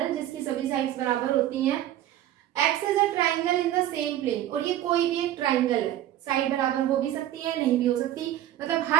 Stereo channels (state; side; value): quieter; left; 12.7 dB